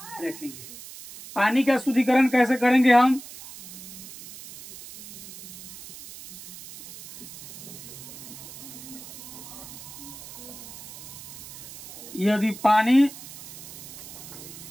रखेंगे। पानी का शुद्धिकरण कैसे करेंगे हम? यदि पानी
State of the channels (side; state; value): right; noise; hiss, 14 dB below the sound